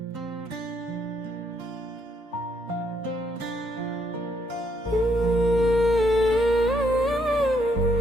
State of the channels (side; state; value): both; normal; correlation 0.72